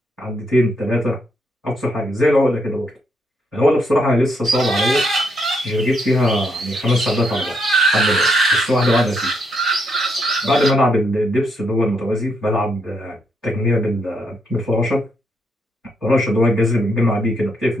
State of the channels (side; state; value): both; normal; correlation 0.76